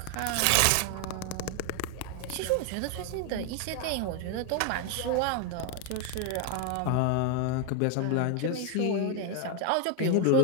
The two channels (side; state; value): both; different; correlation 0.00